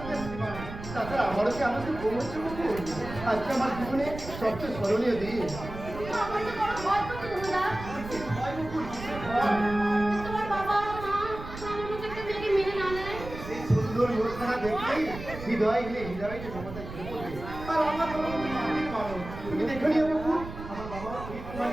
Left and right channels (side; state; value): right; noise; rumble, 11 dB below the sound